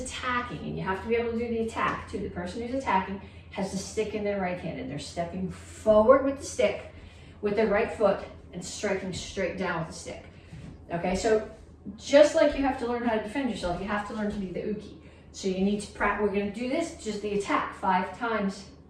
and you have to be able to do the attack too, the person who's attacking has the stick in their right hand and they're stepping forward with the stick with their right foot and striking straight down with the stick. Okay, so just like you have to learn how to defend yourself, you have to learn to be the uke. So you need to practice, we're gonna do this, just the attack 5 times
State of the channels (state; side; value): identical; both; correlation 1.00